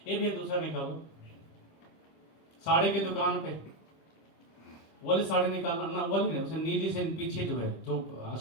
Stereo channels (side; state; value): right; late; 25 ms